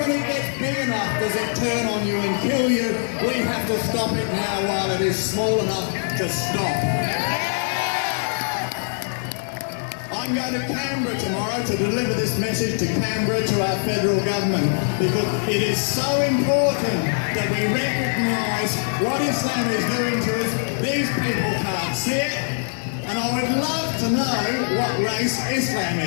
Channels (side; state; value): right; silent; digital silence